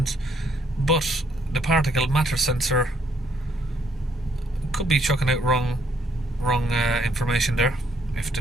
but the particle matter sensor could be chucking out wrong information there if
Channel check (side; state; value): both; normal; correlation 0.70